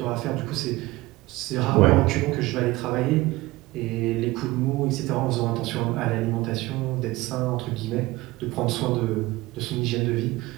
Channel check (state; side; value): quieter; left; 19.7 dB